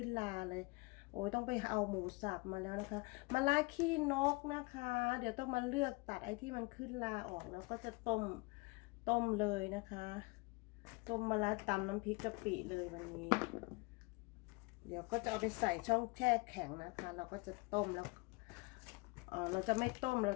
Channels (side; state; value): right; quieter; 27.3 dB